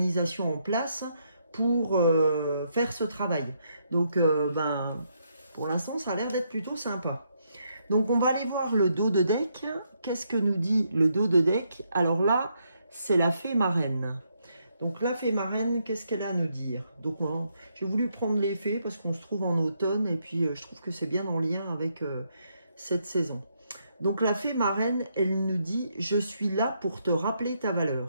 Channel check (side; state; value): both; inverted; correlation -0.76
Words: en place pour faire ce travail. Donc, pour l'instant, ça a l'air d'être plutôt sympa. Donc, on va aller voir le dos de deck. Qu'est-ce que nous dit le dos de deck? Alors là, c'est la fée marraine. Donc la fée marraine, qu'est-ce qu'elle a à nous dire? Donc j'ai voulu prendre les fées parce qu'on se trouve en automne, et puis je trouve que c'est bien en lien avec cette saison. Donc la fée marraine, elle nous dit: je suis là pour te rappeler ta